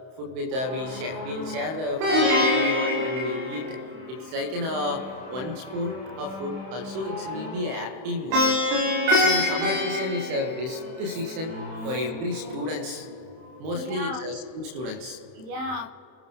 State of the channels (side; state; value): left; late; 31 ms